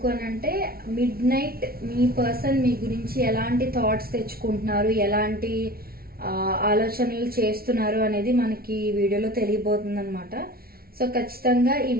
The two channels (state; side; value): late; left; 0.44 ms